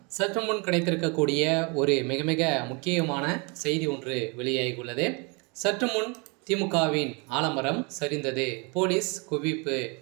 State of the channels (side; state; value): left; quieter; 31.3 dB